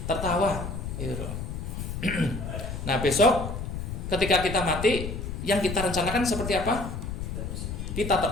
tertawa, gitu loh. Nah, besok ketika kita mati, yang kita rencanakan seperti apa? Kita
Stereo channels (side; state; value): left; noise; rumble, 5 dB below the sound